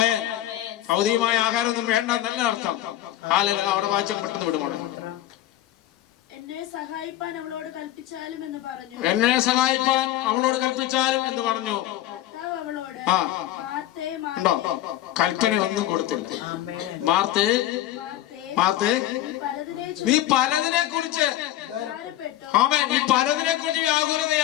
ഭൗതികമായ ആഹാരമൊന്നും വേണ്ട എന്നല്ല അർത്ഥം. അവിടെ വായിച്ച പെട്ടെന്ന് വിടുമോളെ. എന്നെ സഹായിപ്പാൻ അവളോട് കൽപ്പിച്ചാലും എന്ന് പറഞ്ഞു. ഉണ്ടോ? കൽപ്പന ഒന്നും കൊടുത്തില്ല. മാർത്തേ, നീ പലതിനെ കുറിച്ച്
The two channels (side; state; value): right; quieter; 13.8 dB